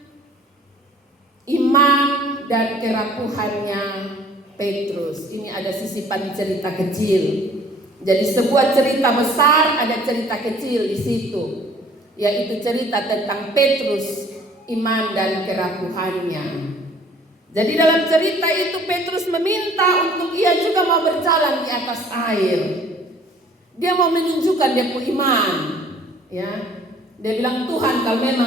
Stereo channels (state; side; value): normal; both; correlation 0.54